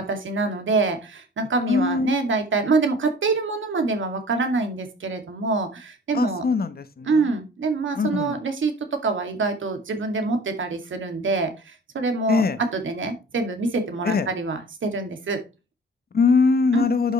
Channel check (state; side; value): normal; both; correlation 0.46